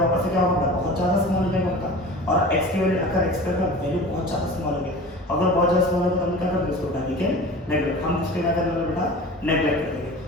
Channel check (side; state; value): both; normal; correlation 0.37